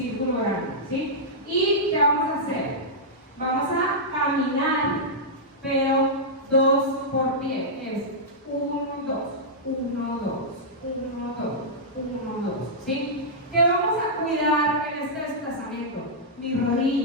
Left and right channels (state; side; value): normal; both; correlation -0.11